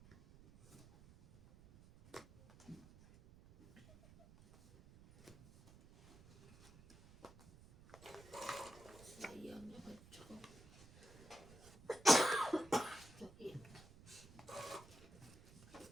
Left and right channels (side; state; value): right; noise; rumble, 21 dB below the sound